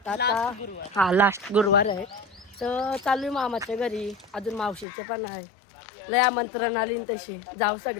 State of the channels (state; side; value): drops out; right; at 4.9 s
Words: आता लास्ट गुरुवार आहे. तर चालू आहे मामाच्या घरी. अजून मावशीचे पण आहे. लय आमंत्रण आली तशी जाऊ